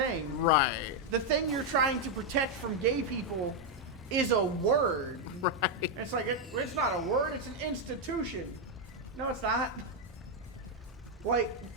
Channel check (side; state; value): both; normal; correlation 0.01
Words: Right. The thing you're trying to protect from gay people is a word. Right. It's like, it's not a word, it's an institution. No, it's not. Like,